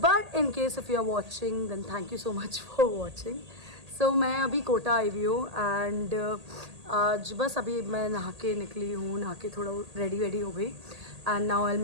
in case if you are watching then thank you so much for watching. So मैं अभी कोटा आई हुई हूँ एंड आज बस अभी मैं नहा के निकली हूँ, नहा के थोड़ा रेडी हो गई and now I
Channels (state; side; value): late; left; 1.8 ms